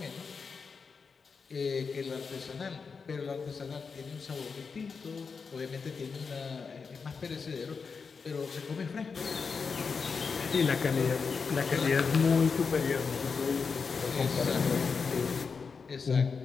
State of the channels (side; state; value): right; quieter; 5.3 dB